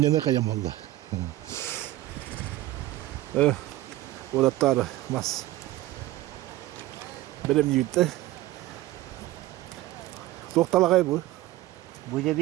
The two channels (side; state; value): left; quieter; 16.2 dB